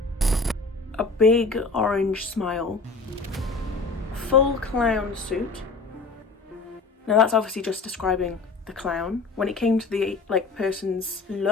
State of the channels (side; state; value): right; quieter; 3.9 dB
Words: a big orange smile, full clown suit. Now that's obviously just describing the clown. When it came to the person's